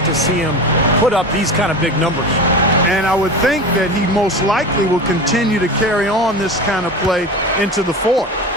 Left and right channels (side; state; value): both; normal; correlation 0.28